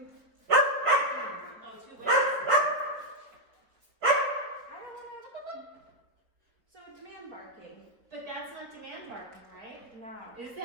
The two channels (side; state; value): left; late; 4.3 ms